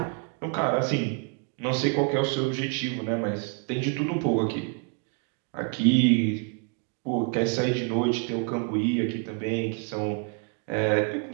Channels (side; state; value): left; quieter; 38.2 dB